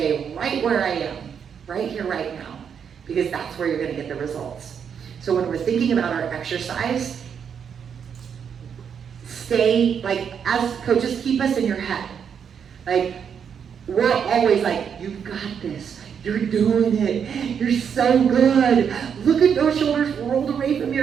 right where I am, right here, right now, because that's where you're gonna get the results. So when we're thinking about our exercise, stay, like, as coaches, keep us in your head. Like, we're always like, you've got this, you're doing it, you're so good. Look at those shoulders rolled away from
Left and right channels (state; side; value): quieter; left; 7.4 dB